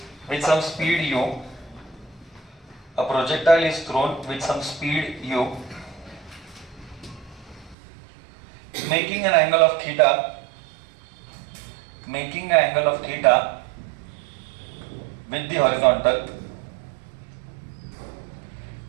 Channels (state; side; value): drops out; left; at 7.8 s